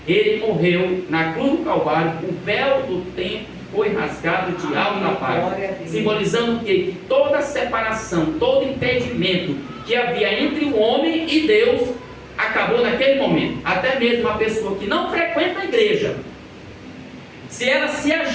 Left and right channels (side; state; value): both; identical; correlation 1.00